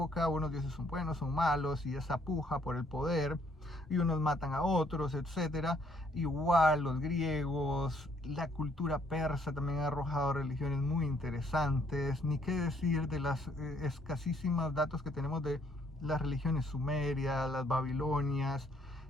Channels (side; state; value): both; normal; correlation 0.67